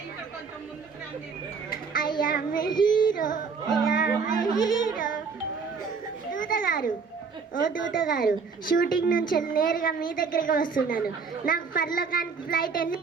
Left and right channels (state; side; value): quieter; left; 5.3 dB